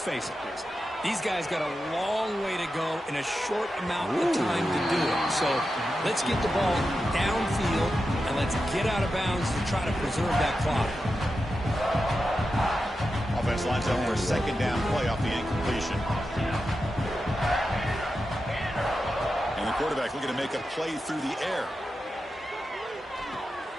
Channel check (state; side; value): normal; both; correlation 0.90